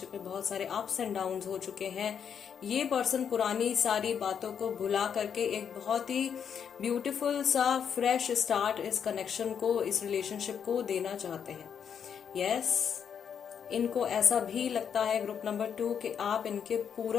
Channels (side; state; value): right; quieter; 7.7 dB